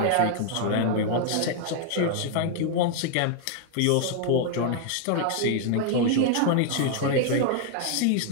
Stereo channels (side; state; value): both; different; correlation 0.00